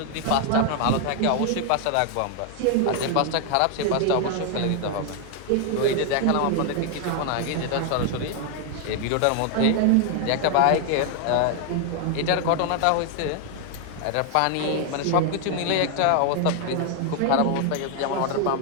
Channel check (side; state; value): both; different; correlation 0.00